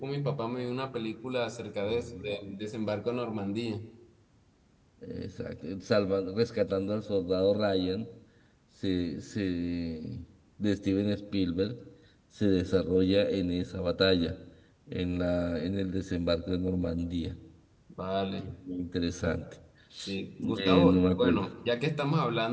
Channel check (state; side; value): identical; both; correlation 1.00